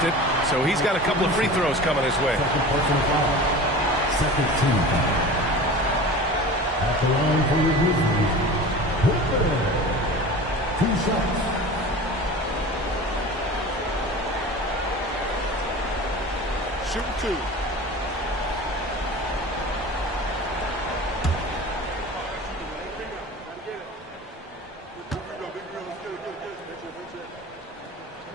it, so he's got a couple of free throws coming his way. Second team foul. At the line for your Grizzlies, 2 shots. Shoot 2.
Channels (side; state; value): both; normal; correlation 0.36